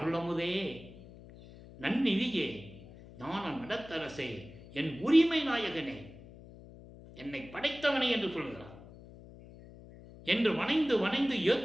நன்னிதியே, ஞான நடத்தரசே, என் உரிமை நாயகனே, என்னை படைத்தவனே என்று சொல்கிறார். என்று வணைந்து வணைந்து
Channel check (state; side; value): noise; left; hum, 18 dB below the sound